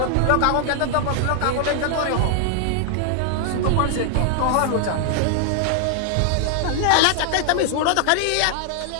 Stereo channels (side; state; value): both; different; correlation 0.00